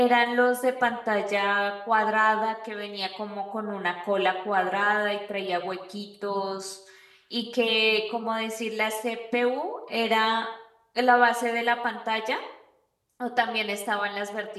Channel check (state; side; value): identical; both; correlation 1.00